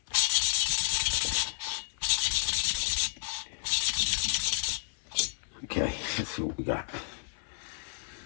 Okay, let's see what we got.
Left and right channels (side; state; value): right; silent; digital silence